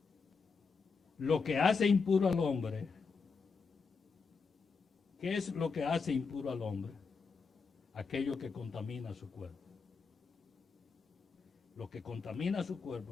Lo que hace impuro al hombre, ¿qué es lo que hace impuro al hombre? Aquello que contamina su cuerpo. Lo que contamina su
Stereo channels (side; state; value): right; quieter; 5.0 dB